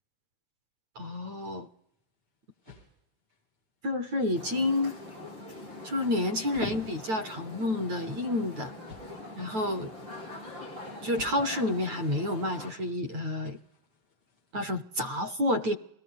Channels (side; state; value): left; late; 9.1 ms